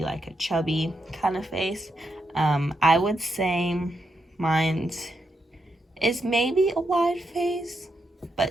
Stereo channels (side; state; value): both; normal; correlation 0.83